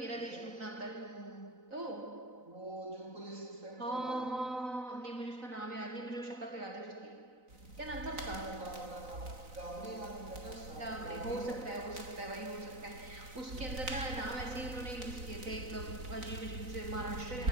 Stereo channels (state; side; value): late; left; 4.0 ms